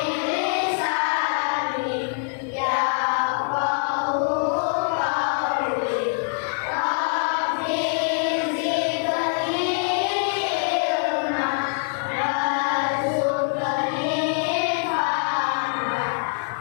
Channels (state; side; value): silent; right; 63 dB below the other